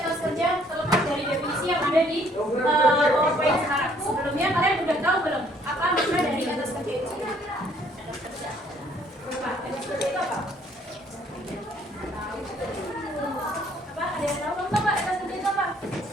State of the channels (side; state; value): both; normal; correlation 0.63